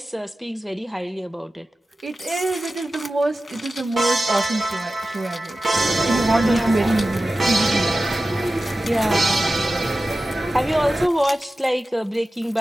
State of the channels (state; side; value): normal; both; correlation 0.94